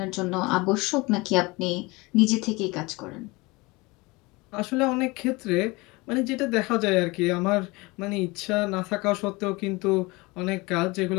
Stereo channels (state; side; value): quieter; right; 24.1 dB